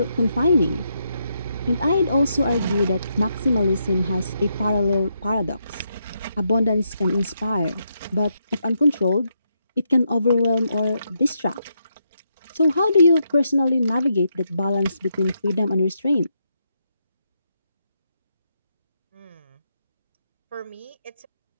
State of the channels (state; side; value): inverted; both; correlation -0.80